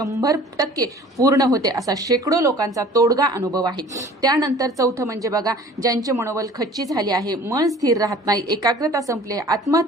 पूर्ण होते, असा शेकडो लोकांचा तोडगा अनुभव आहे. त्यानंतर चौथं म्हणजे बघा, ज्यांचे मनोबल खच्ची झाले आहे, मन स्थिर राहत नाही, एकाग्रता संपली,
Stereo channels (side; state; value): both; normal; correlation 0.48